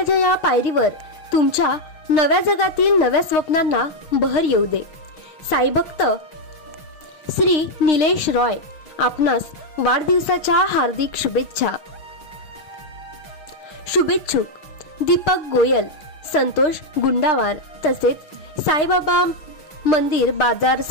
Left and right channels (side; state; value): right; late; 6.5 ms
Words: या पायरीवर तुमच्या नव्या जगातील नव्या स्वप्नांना बहर येऊ दे। साई भक्त श्री निलेश रॉय आपणास वाढदिवसाच्या हार्दिक शुभेच्छा। शुभेच्छुक दीपक गोयल, संतोष गुंडावार तसेच साईबाबा मंदिर बाजार